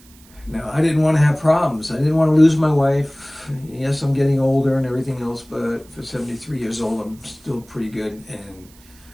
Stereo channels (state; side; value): noise; right; hiss, 26 dB below the sound